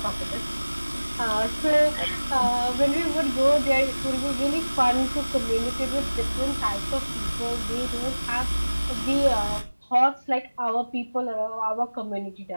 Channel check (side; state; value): both; inverted; correlation -1.00